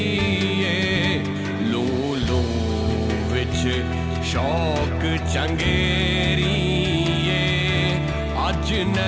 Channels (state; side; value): identical; both; correlation 1.00